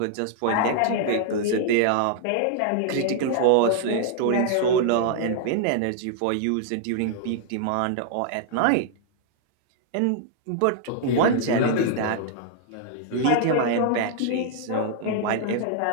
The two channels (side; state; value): both; different; correlation -0.01